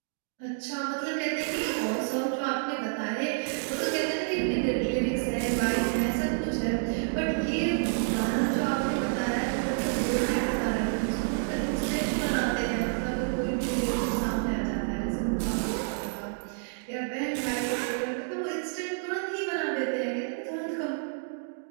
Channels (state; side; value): silent; left; digital silence